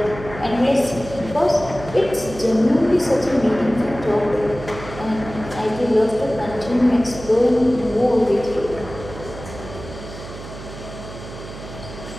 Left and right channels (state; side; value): noise; right; hum, 13 dB below the sound